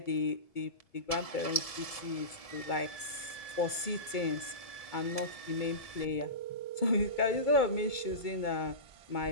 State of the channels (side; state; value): right; late; 2.2 ms